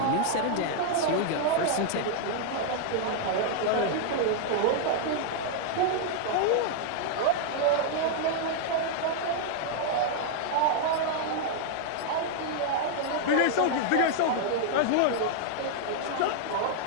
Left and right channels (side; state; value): both; different; correlation -0.01